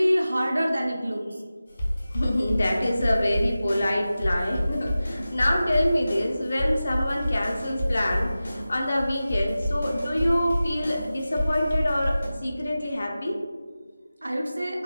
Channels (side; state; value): both; inverted; correlation -0.95